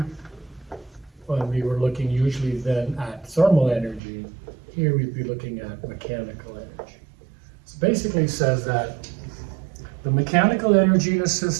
when we were looking usually then at thermal energy. Here we'd be looking at mechanical energy. So basically it says that the mechanical energy in a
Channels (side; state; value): left; drops out; at 4.0 s